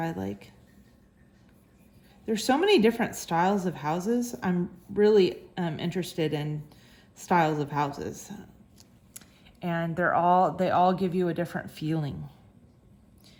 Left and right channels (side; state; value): both; identical; correlation 1.00